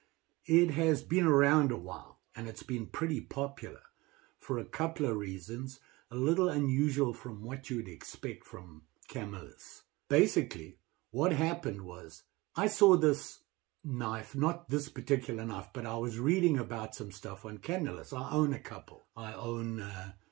It has been around a while and it's been pretty popular for a couple of reasons, a little unusual from what you would expect from Camillus. Basically, what happened was I saw this knife, not this particular knife, but I was reading about some stuff on Camillus. I own a couple. I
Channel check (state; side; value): quieter; left; 22.1 dB